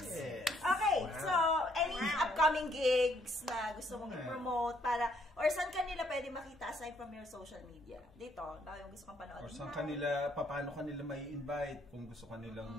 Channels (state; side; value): normal; both; correlation 0.68